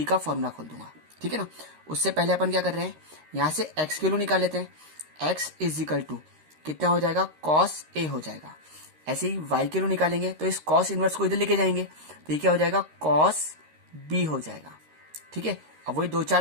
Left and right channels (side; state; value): left; late; 13 ms